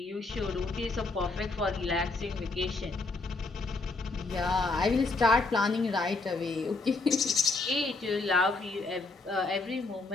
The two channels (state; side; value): quieter; right; 3.5 dB